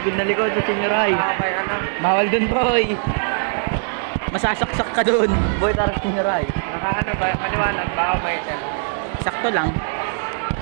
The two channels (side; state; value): left; silent; digital silence